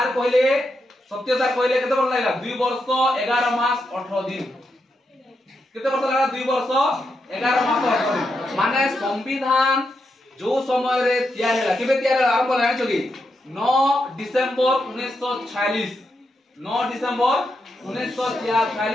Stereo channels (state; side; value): normal; both; correlation 0.84